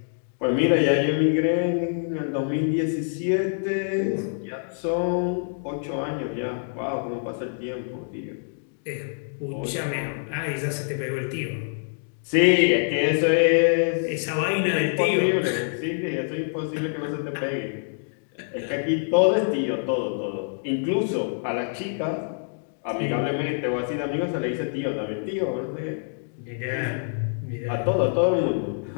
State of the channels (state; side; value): silent; right; digital silence